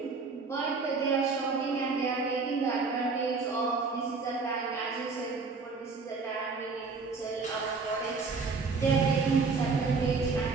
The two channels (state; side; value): quieter; left; 4.4 dB